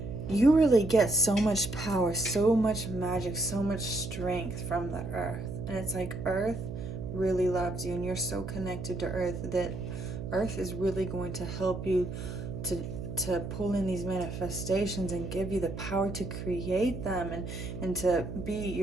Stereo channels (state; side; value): noise; right; hum, 7 dB below the sound